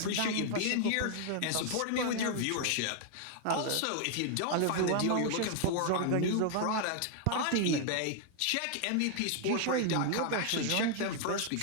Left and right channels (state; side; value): different; both; correlation 0.00